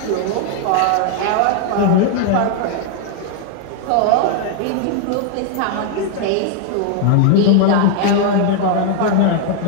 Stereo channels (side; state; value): both; different; correlation 0.00